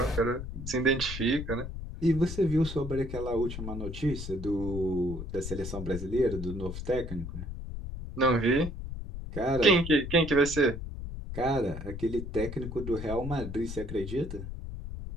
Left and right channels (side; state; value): left; noise; rumble, 8 dB below the sound